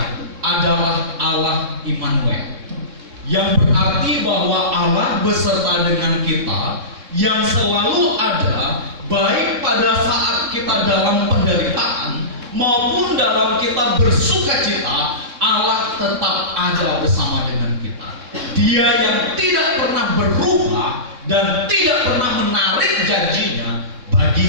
adalah Allah Immanuel, yang berarti bahwa Allah beserta dengan kita, yang selalu ada baik pada saat kita dalam penderitaan maupun dalam kita bersuka cita. Allah tetap ada bersama dengan kita. Dia yang tidak pernah berubah dan tidak pernah menarik janjinya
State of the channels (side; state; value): left; late; 3.6 ms